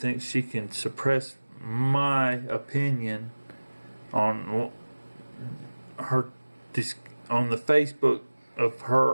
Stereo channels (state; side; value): inverted; both; correlation -1.00